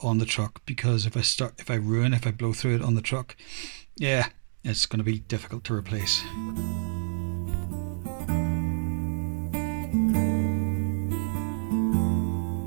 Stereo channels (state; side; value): silent; left; digital silence